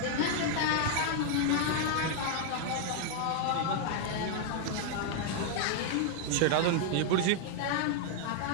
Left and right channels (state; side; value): different; both; correlation 0.00